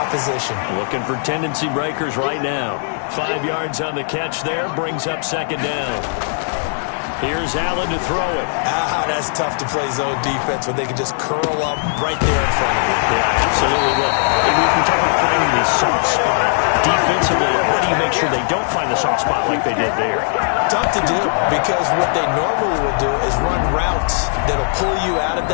Looking for tendency breakers right now. 5 yards on the catch there, brings up second down. Here's Allen to throw it. That's tough to play zone defense when they can just curl up right there in front of you. Yeah, absolutely. Well, we can talk about finding the soft spot defensively. How do you make sure they don't find the soft spot like they did there? Tough to do, because what they normally will do is run routes that'll pull you out of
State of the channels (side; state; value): right; silent; digital silence